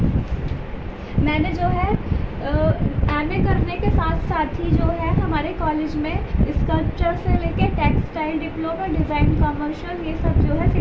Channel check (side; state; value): both; identical; correlation 1.00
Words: मैंने जो है एमए करने के साथ साथ ही जो है हमारे कॉलेज में स्कल्पचर से लेके टेक्सटाइल डिप्लोमा, डिज़ाइन, कमर्शियल, ये सब जो है